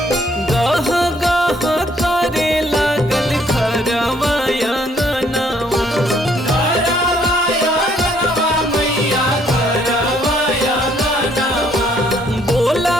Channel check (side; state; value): both; normal; correlation 0.66